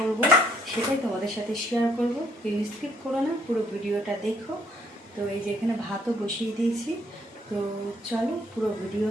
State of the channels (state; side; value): normal; both; correlation 0.67